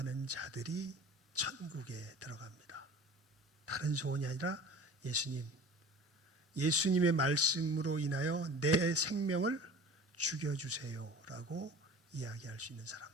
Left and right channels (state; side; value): normal; both; correlation 0.41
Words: 자들이 천국에 들어갑니다. 다른 소원이 아니라 예수님의 말씀으로 인하여 내 생명을 죽여주세요라고 이야기할 수 있는